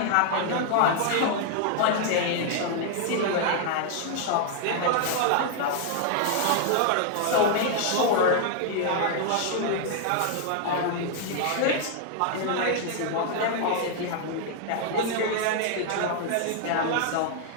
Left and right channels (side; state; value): both; different; correlation 0.00